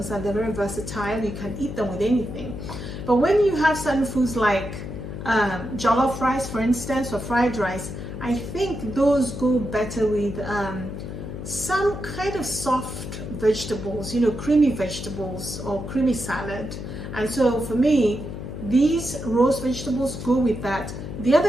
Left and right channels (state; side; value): noise; left; hum, 8 dB below the sound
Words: they're very versatile. You can eat them with anything. But when you have certain foods like jollof rice, for instance, or fried rice, I think those go better with some kind of soft vegetables, you know, creamy vegetables or creamy salad. And so for me, these roast vegetables go with that. The